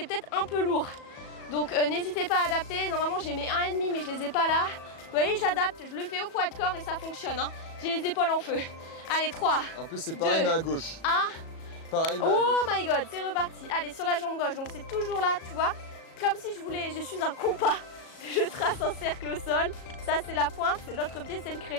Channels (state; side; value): late; right; 37 ms